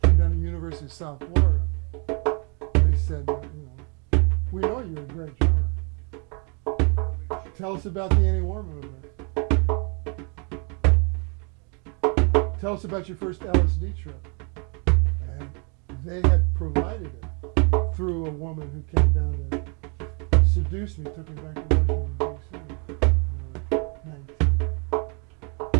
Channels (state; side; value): quieter; left; 35.3 dB